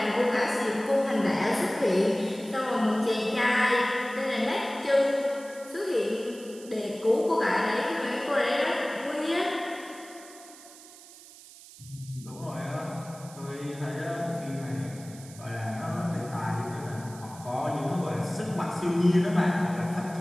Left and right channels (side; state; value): right; noise; hiss, 19 dB below the sound